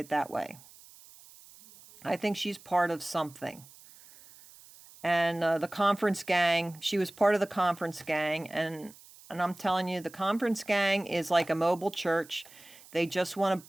that way. I think she's part of something. And the conference gang, she was part of the conference gang. And I'm telling you, the conference gang is like a mobile church. They just want to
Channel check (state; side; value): noise; right; hiss, 22 dB below the sound